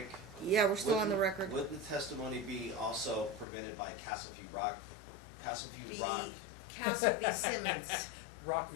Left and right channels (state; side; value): drops out; right; at 3.5 s